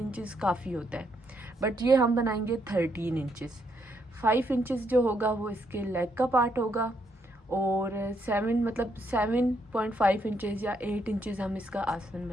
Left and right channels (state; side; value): normal; both; correlation 0.75